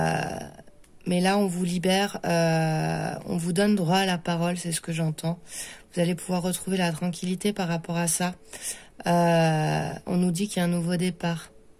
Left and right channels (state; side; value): identical; both; correlation 1.00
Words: là, on vous libère. On vous donne droit à la parole, c'est ce que j'entends. Vous allez pouvoir retrouver la tranquillité par rapport à ça. On nous dit qu'il y a un nouveau départ.